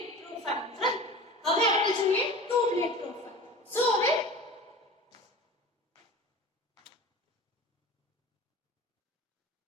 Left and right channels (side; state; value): both; normal; correlation 0.37